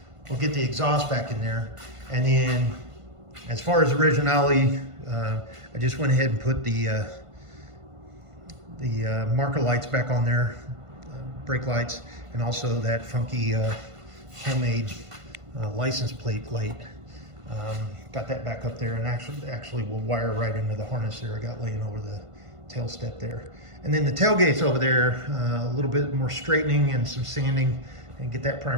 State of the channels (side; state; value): left; late; 1.5 ms